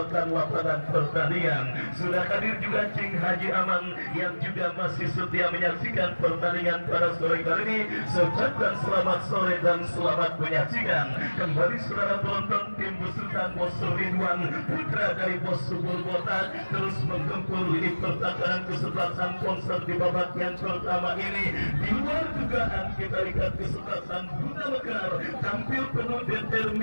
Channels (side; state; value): both; inverted; correlation -1.00